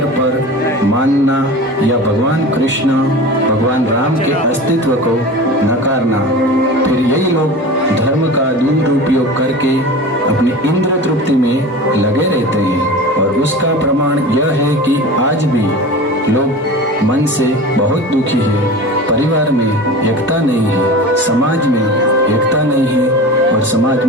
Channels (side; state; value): both; normal; correlation 0.33